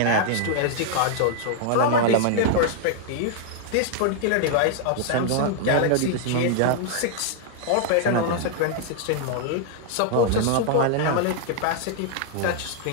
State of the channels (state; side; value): different; both; correlation 0.00